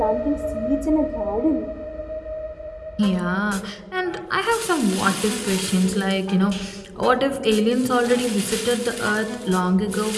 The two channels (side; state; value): both; identical; correlation 1.00